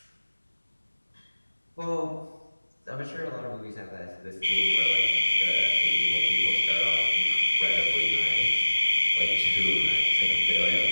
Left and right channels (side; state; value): both; inverted; correlation -1.00